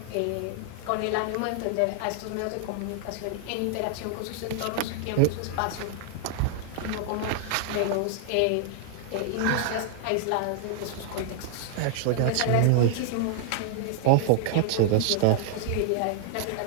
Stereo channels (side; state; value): both; different; correlation 0.00